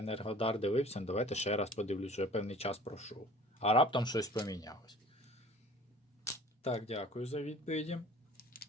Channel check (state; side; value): normal; both; correlation 0.47